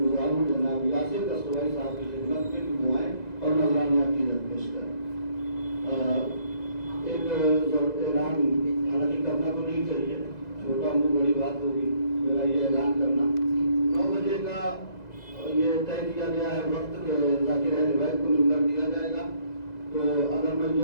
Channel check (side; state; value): right; late; 2.0 ms